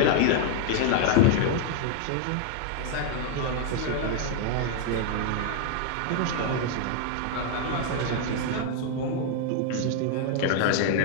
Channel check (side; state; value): both; different; correlation 0.00